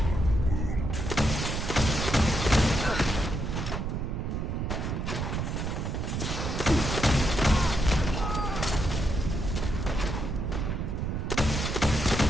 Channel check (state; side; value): noise; right; rumble, 2 dB below the sound